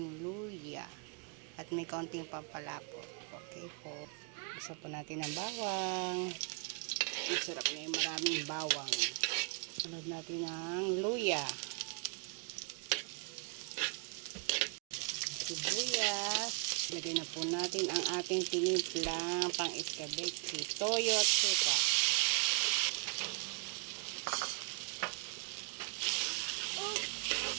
luya. At may kaunting pampalapot. Okay po. Isa po natin ang bawang. Masarap na yung maraming bawang. Sunod natin ang luya. Sibuyas. Lagyan na po natin ang ating tinimplang pang iskabeche, toyo at suka.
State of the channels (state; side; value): quieter; left; 33.5 dB